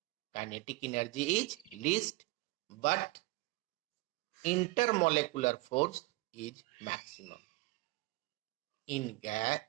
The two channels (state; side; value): quieter; left; 21.8 dB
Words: But intermolecular force is maximum. In